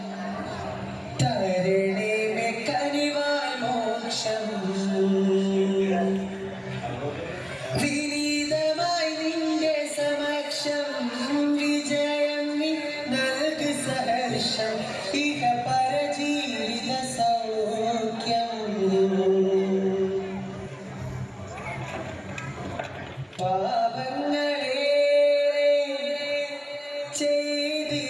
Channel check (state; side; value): identical; both; correlation 1.00